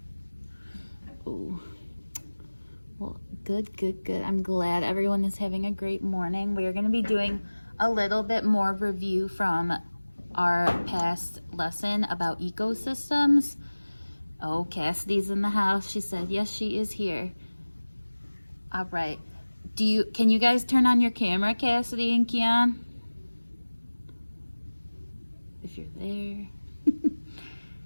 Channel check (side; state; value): both; inverted; correlation -1.00